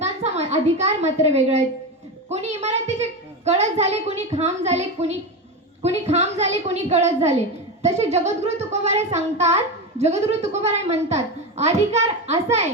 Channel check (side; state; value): both; normal; correlation 0.18